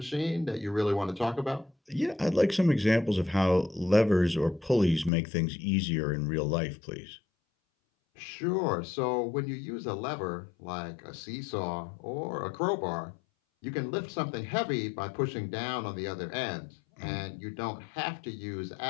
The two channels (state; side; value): drops out; right; at 5.1 s